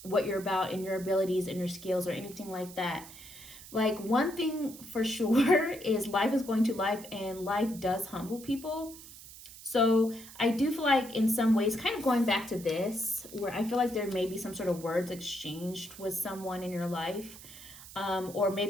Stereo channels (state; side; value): noise; right; hiss, 16 dB below the sound